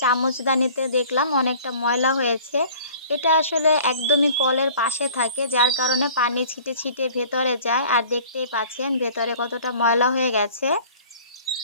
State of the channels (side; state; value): both; inverted; correlation -0.49